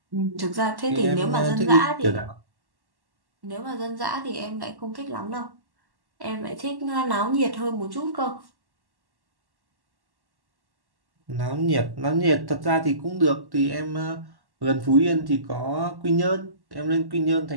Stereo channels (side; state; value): left; late; 1.1 ms